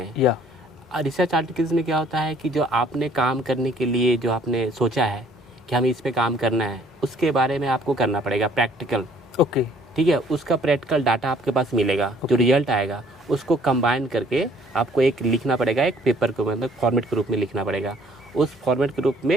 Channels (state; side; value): normal; both; correlation 0.59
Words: या रिसर्च आर्टिकल्स में क्या होता है कि जो आपने काम करने के लिए जो आपने सोचा है कि हमें इस पे काम करना है, उसके बारे में आपको करना पड़ेगा प्रैक्टिकल। ओके ठीक है, उसका प्रैक्टिकल डाटा आपके पास मिलेगा, जो रिजल्ट आएगा उसको कंबाइन करके आपको एक लिखना पड़ेगा, एक पेपर को मतलब फॉर्मेट के रूप में लिखना पड़ेगा। उस फॉर्मेट के रूप